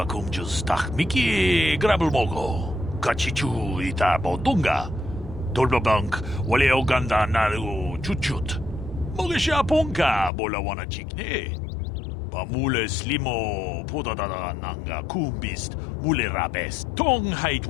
kumjus tak miki grabel mogo. Kachichu ita bodunga. Dolbabank wale oganda naru chuchut. Mogesha ponka bola wana chikne. Pamule slimo podadada nanga kumbist mule rabes tong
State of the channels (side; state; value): right; drops out; at 10.3 s